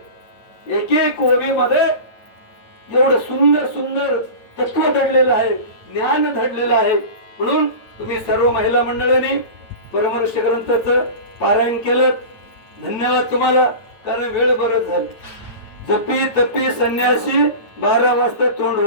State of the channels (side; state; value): right; late; 9.1 ms